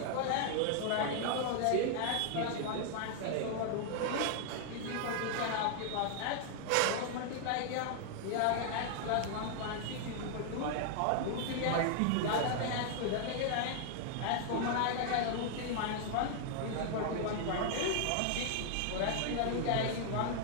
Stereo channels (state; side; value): different; both; correlation 0.00